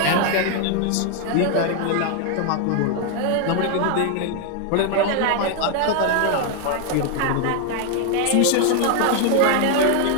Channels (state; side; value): different; both; correlation 0.00